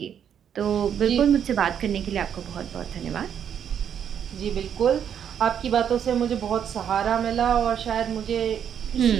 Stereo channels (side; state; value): left; quieter; 8.7 dB